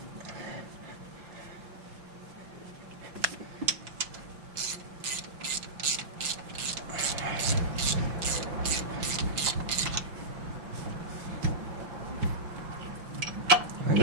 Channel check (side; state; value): left; late; 5.8 ms